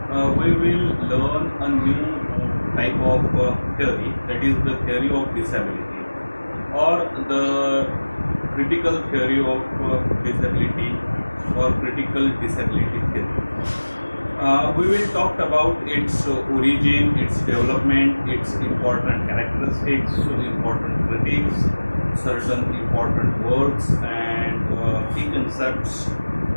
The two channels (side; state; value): both; inverted; correlation -1.00